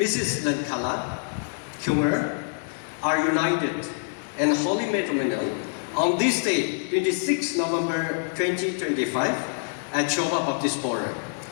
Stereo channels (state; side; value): silent; right; digital silence